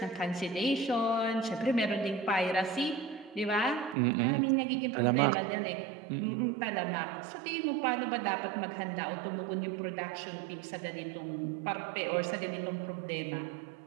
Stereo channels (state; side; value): drops out; left; at 4.0 s